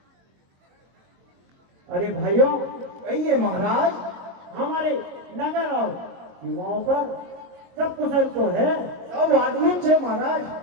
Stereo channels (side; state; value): left; late; 22 ms